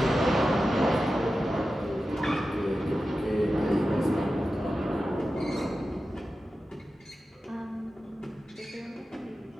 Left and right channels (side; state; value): both; normal; correlation 0.93